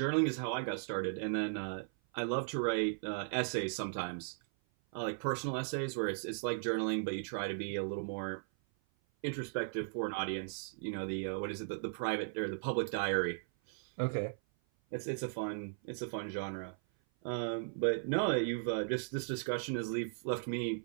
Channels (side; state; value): left; silent; 53 dB below the other